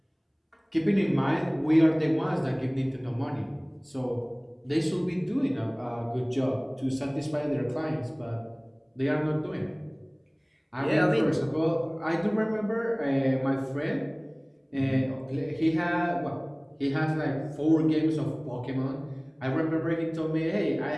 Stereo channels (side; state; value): both; identical; correlation 1.00